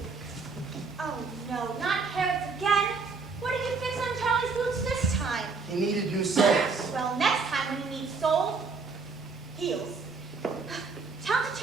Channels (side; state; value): left; quieter; 4.6 dB